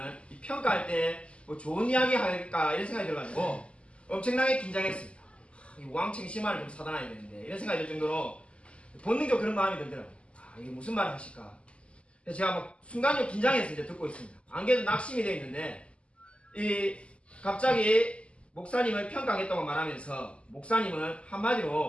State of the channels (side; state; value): right; late; 0.056 ms